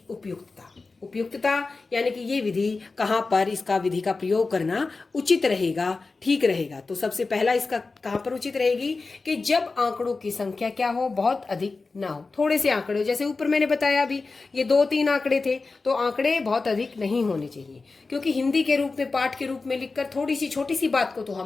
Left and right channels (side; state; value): right; quieter; 3.9 dB